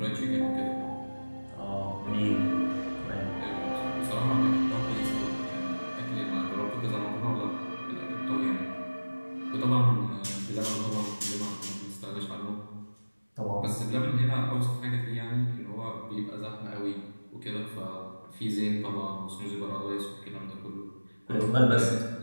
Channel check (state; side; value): inverted; both; correlation -1.00